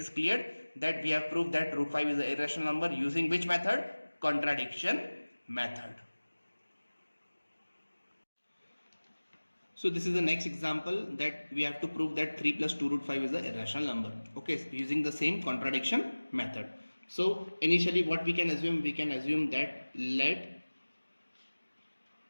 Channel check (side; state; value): both; inverted; correlation -1.00